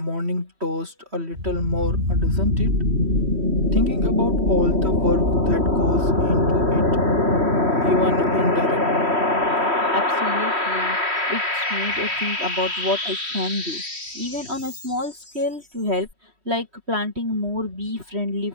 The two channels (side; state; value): left; late; 3.1 ms